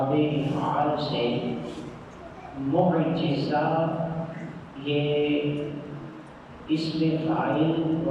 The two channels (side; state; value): both; identical; correlation 1.00